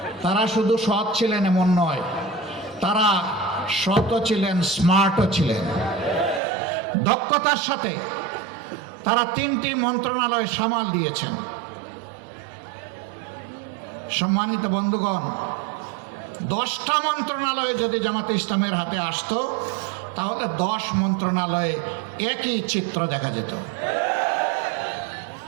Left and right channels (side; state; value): left; drops out; at 6.4 s